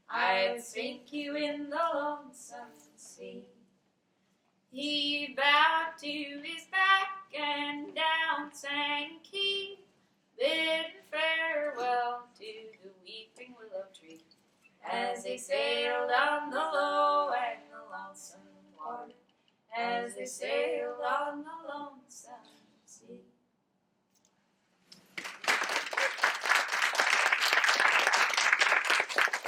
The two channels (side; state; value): both; identical; correlation 1.00